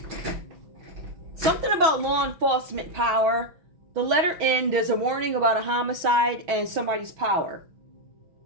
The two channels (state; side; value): late; left; 6.0 ms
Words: Something about law enforcement power. The letter N, there's a warning about a homicide and somebody's power.